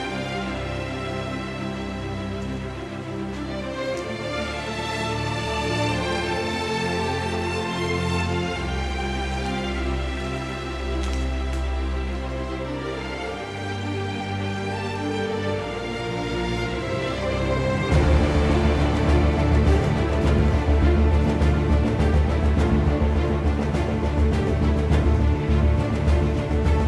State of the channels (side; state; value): both; identical; correlation 1.00